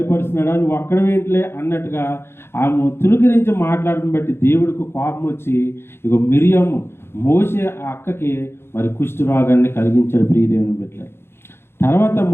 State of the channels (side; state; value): right; late; 0.12 ms